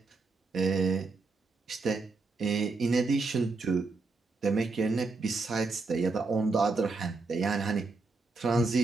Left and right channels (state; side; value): quieter; left; 3.9 dB